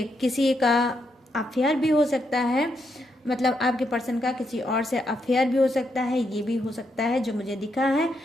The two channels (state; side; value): normal; both; correlation 0.80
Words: किसी का अफेयर भी हो सकता है, मतलब आपके पर्सन का किसी और से अफेयर भी हो सकता है, ये भी हो सकता है जो मुझे दिखा है।